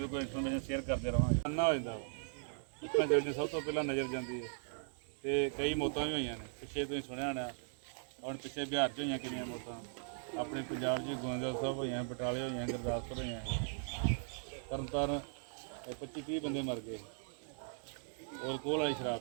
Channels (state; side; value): silent; left; digital silence